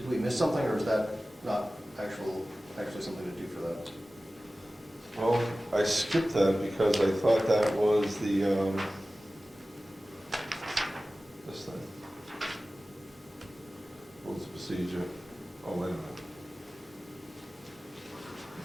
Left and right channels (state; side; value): normal; both; correlation 0.96